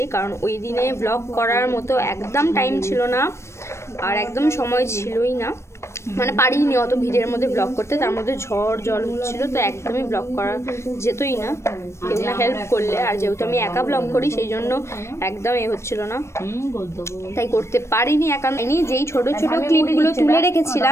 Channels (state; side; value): late; right; 0.13 ms